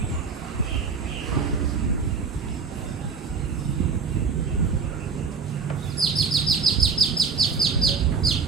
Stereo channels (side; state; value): left; quieter; 5.3 dB